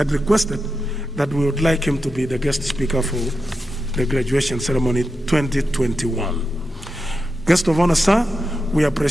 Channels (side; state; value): both; normal; correlation 0.89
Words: requested that we would like him to be the guest speaker for the graduation ceremony 2021. Guest of honor, sir, we